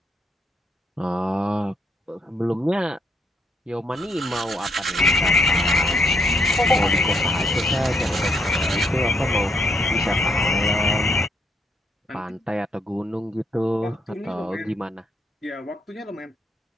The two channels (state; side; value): normal; both; correlation 0.73